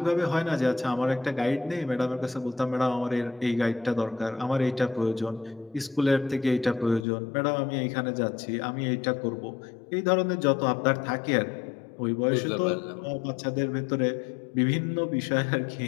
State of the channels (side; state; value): right; drops out; at 7.1 s